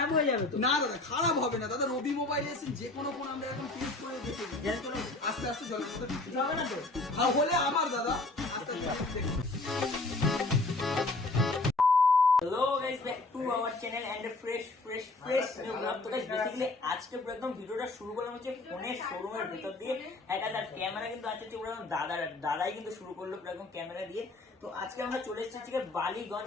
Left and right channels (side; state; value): right; quieter; 3.1 dB